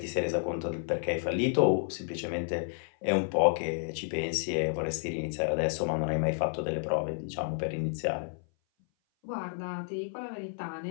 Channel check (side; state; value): right; silent; 56 dB below the other